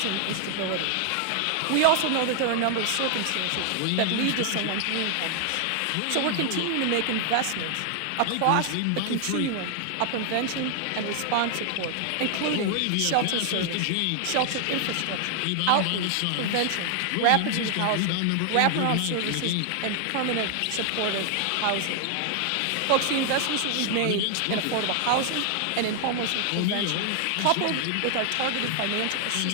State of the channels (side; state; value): both; different; correlation 0.00